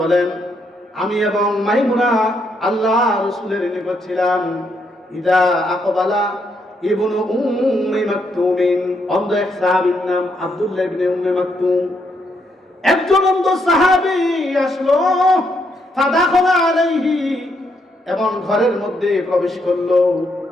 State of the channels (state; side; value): normal; both; correlation 0.76